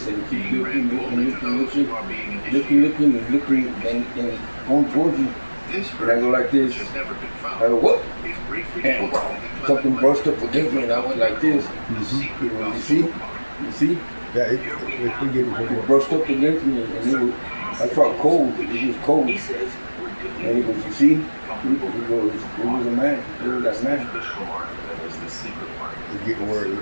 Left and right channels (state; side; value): inverted; both; correlation -1.00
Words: and he keeps looking, and going towards me. And I go like this. I go, what? And something brushed up against me, and I went like this. You see? Yeah, we get It brushed up against me, and I felt cold. It was cold. And he goes, you see? He goes, it was a man. It was that man. It's getting where it